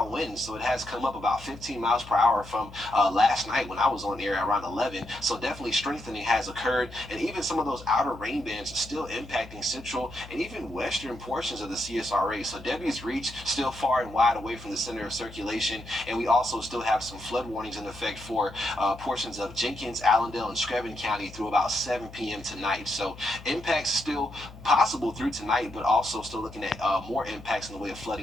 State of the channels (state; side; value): noise; left; hum, 17 dB below the sound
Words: winds, so it has come up about 15 miles per hour from last night when I was on air around 11. So definitely strengthening has occurred, and even some of those outer rain bands still impacting central and even western portions of the CSRA. So Debbie's reach still far and wide away from the center of circulation, and we also still have some flood warnings in effect for portions of Jenkins, Allendale, and Screven County through about 7 p.m. tonight. So impacts still possible through tonight, but also still looking at more impacts in the way of